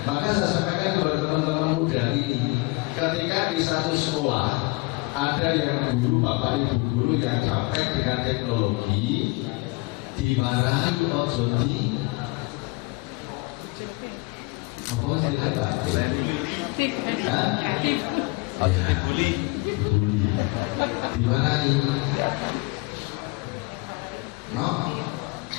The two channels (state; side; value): quieter; right; 25.3 dB